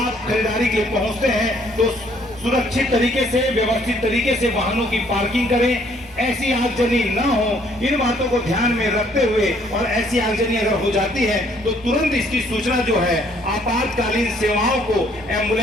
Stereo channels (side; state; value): both; normal; correlation 0.64